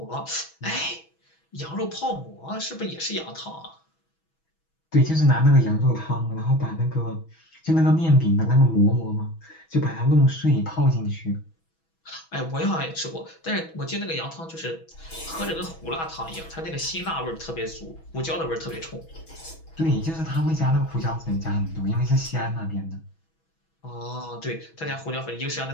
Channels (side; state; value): right; late; 6.2 ms